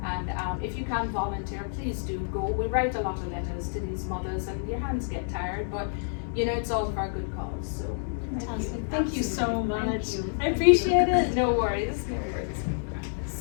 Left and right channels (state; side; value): silent; right; digital silence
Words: And if you can volunteer, please do go. We write a lot of letters to these mothers, and your hands get tired, but you know, it's all for a good cause. So Fantastic. Thank you so much. Thank you. I appreciate it. No worries. No worries.